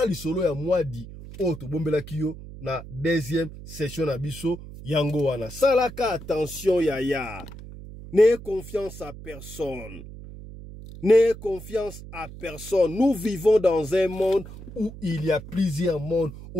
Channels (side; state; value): right; noise; hum, 14 dB below the sound